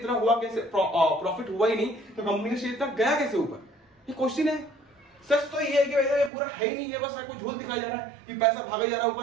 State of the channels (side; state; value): left; drops out; at 6.3 s